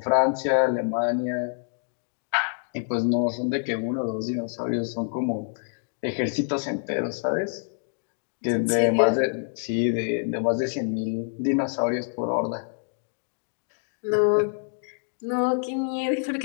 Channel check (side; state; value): right; silent; 61 dB below the other